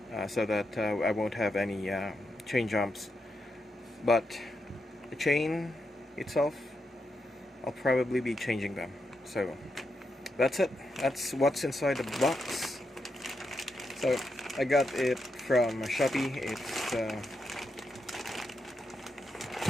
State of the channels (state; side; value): normal; both; correlation 0.84